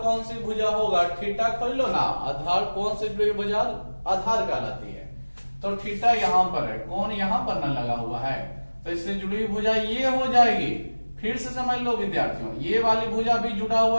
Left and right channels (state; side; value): inverted; both; correlation -1.00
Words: कौन सी भुजा होगा, थीटा खोल लो ना, आधार कौन सी भुजा आधार कहलाती है। तो थीटा यहां पर है, कौन यहां पर ना लगा हुआ है, तो इससे जुड़ी हुई भुजा ये हो जाएगी। फिर से समझ लो विद्यार्थियों, ये वाली भुजा भी जुड़ा